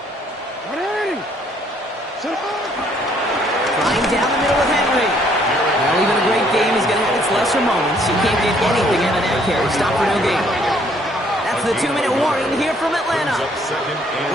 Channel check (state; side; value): normal; both; correlation 0.64